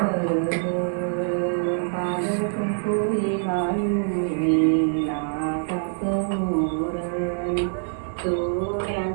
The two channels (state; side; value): silent; left; 58 dB below the other